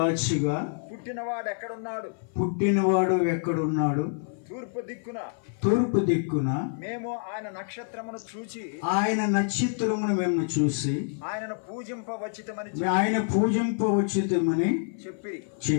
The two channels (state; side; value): silent; right; 56 dB below the other